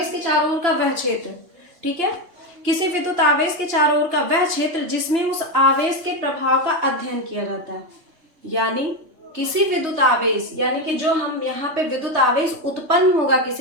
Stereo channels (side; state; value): left; late; 3.3 ms